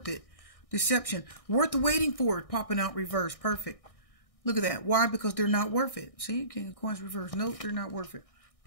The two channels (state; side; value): late; right; 1.6 ms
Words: it. Deception. Worth the waiting for it. Popping out reverse. Perfect. Look at that. Why? Because they're not worth it. See? King of Coins reverse. Nope, they're not worth it.